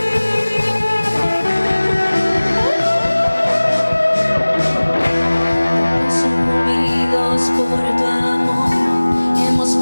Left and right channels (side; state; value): both; inverted; correlation -1.00